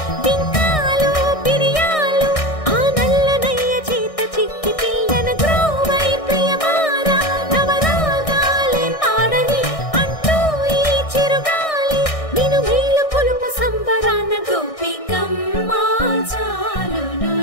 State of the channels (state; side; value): late; right; 1.6 ms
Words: బింకాలు బిరియాలు ఆ నల్లనయ్య చేత చిక్కి పిల్లన గ్రోవై ప్రియమారా నవరాగాలే పాడని అంటూ ఈ చిరుగాలి నిన్ను మేలు కొలుపు సంబరాన గోపికమ్మ